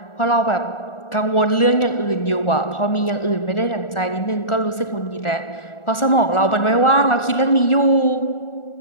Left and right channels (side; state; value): right; late; 1.4 ms